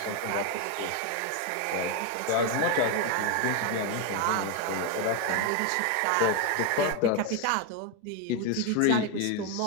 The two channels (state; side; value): different; both; correlation 0.02